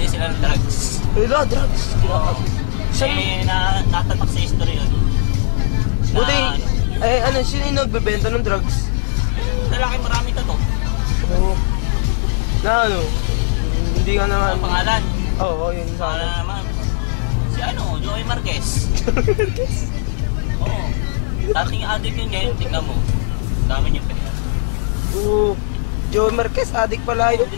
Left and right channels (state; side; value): silent; right; 67 dB below the other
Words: sila ng drugs. Wala, drugs. Oo. Saan? Natatak sa history yun. Buti, Na, ano, sino yung nagbebenta ng drugs? lalaki maraming tato. Oo. Na ano, hindi ka naman... Ang pangalan. Oo, yun sa Pangalan akin. naman. Si ano, Joey Marquez. Oo. Dating addict yun ngayon, tignan mo. Dami niyong pera. Oo. Joey Marquez, adik pala yun. Dito